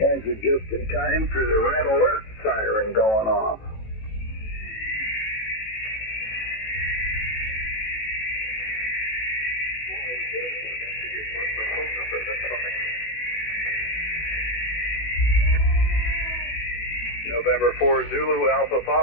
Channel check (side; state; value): right; late; 18 ms